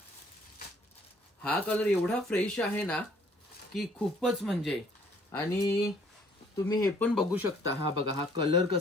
हा कलर एवढा फ्रेश आहे ना की खूपच म्हणजे, आणि तुम्ही हे पण बघू शकता, हा बघा हा कलर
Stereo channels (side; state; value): both; normal; correlation 0.60